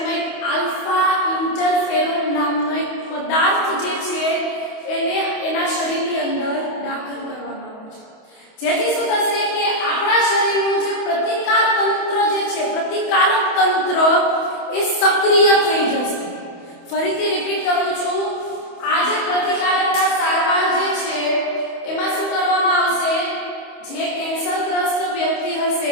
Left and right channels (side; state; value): right; late; 28 ms